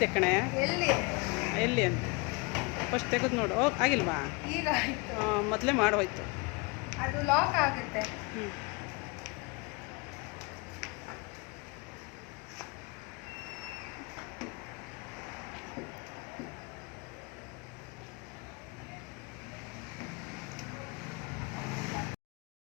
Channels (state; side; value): quieter; right; 28.2 dB